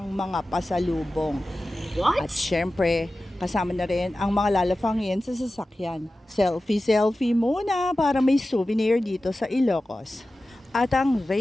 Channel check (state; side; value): normal; both; correlation 0.95